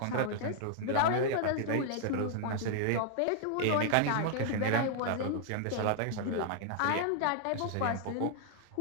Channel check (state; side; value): different; both; correlation -0.01